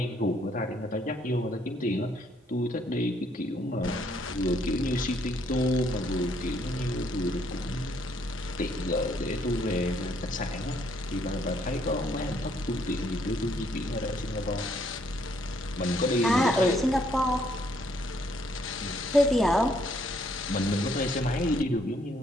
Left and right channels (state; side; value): normal; both; correlation 0.69